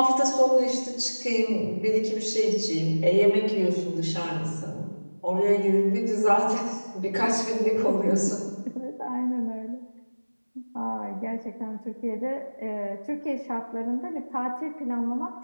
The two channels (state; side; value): inverted; both; correlation -1.00